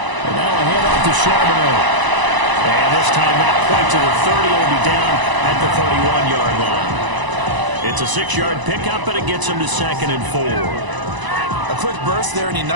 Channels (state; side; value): late; left; 1.0 ms